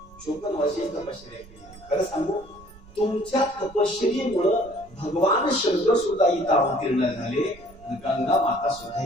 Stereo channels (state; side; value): noise; right; rumble, 21 dB below the sound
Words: 54 वर्षाची तपश्चर्या केली. खरं सांगू, तुमच्या तपश्चर्येमुळं भगवान शंकर सुद्धा इथं अवतीर्ण झाले आणि गंगा माता सुद्धा